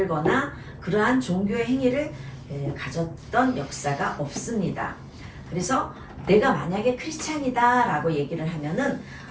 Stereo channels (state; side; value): identical; both; correlation 1.00